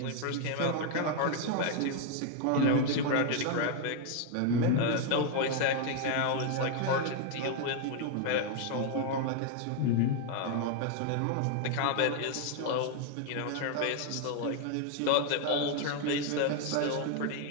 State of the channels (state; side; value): different; both; correlation 0.01